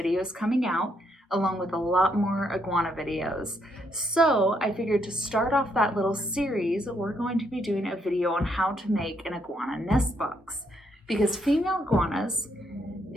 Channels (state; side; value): normal; both; correlation 0.75